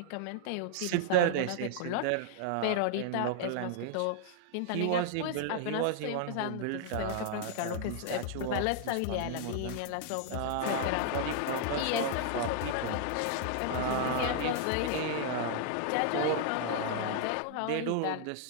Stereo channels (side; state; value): both; different; correlation -0.01